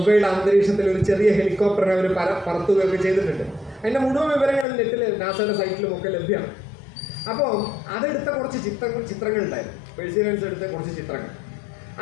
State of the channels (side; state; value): right; drops out; at 4.7 s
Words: അന്തരീക്ഷത്തിൽ ഒരു ചെറിയ ഹെലികോപ്റ്ററിനെ അവർ പറത്തുകയൊക്കെ ചെയ്തിട്ടുണ്ട്. അതിൻ്റെ മുഴുവൻ വിവരങ്ങൾ നെറ്റിൽ നാസയുടെ സൈറ്റിലും ഒക്കെ ലഭ്യമാണ്. അപ്പോൾ അതെടുത്ത കുറച്ച് ചിത്രങ്ങൾ ഉണ്ടായിരുന്നു. പേഴ്സിറിയൻസ് എടുത്ത കുറച്ച് ചിത്രങ്ങൾ.